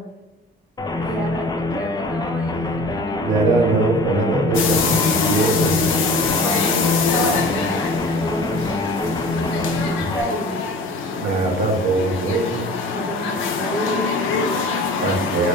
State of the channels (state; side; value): normal; both; correlation 0.43